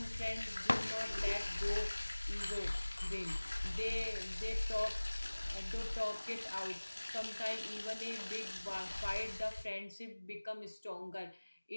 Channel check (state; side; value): inverted; both; correlation -1.00